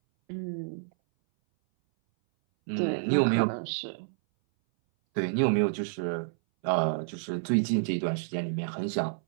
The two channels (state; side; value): silent; left; 58 dB below the other